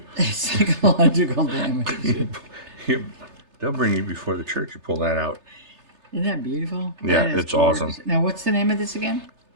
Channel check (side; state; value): left; late; 3.3 ms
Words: Psychological damage. They'll bring you before the church. You pull that out. Isn't that beautiful? Yeah, it's awesome. Now, what's the name of this again?